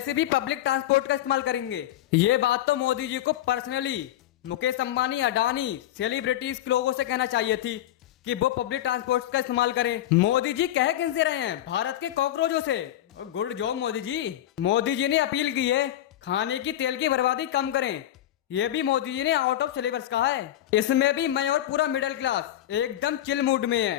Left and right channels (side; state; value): right; quieter; 12.7 dB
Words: भी पब्लिक ट्रांसपोर्ट का इस्तेमाल करेंगे। ये बात तो मोदी जी को पर्सनली मुकेश अंबानी, अडानी, सेलिब्रिटीज के लोगों से कहना चाहिए थी कि वो पब्लिक ट्रांसपोर्ट का इस्तेमाल करें। मोदी जी कह किनसे रहे हैं, भारत के कॉकरोचों से। Good job Modi ji. मोदी जी ने अपील की है खाने की तेल की बर्बादी कम करें। ये भी मोदी जी ने आउट ऑफ सिलेबस कहा है। इसमें भी मैं और पूरा मिडिल क्लास एकदम चिल मूड में